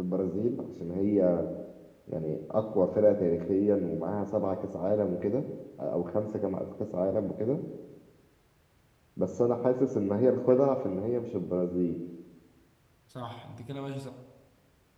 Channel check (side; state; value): both; identical; correlation 1.00